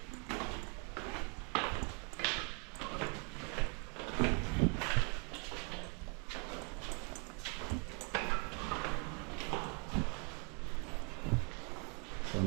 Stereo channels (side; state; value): left; quieter; 35.1 dB